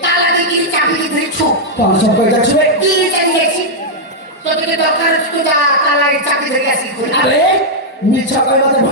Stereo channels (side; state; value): both; normal; correlation -0.04